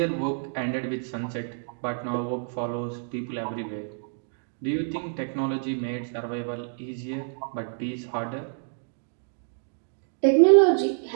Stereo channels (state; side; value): silent; left; digital silence